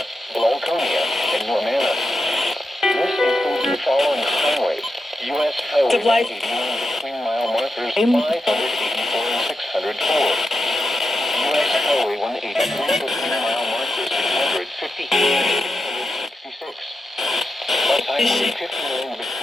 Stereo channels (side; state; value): both; normal; correlation 0.88